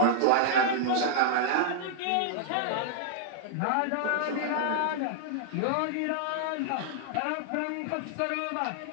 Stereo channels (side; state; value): both; different; correlation -0.01